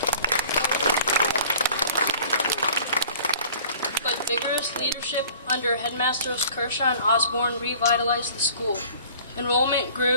But vigorous leadership under Headmasters Kershaw and Osborne revitalized the school. Enrollment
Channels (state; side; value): inverted; both; correlation -0.48